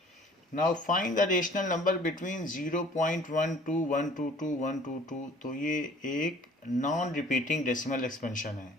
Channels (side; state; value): both; normal; correlation 0.52